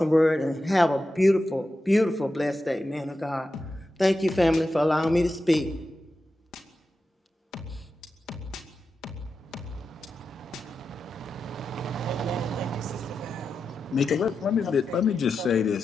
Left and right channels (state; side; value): normal; both; correlation 0.90